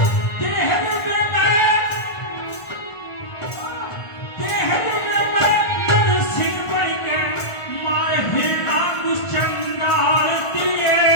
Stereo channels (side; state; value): right; late; 1.5 ms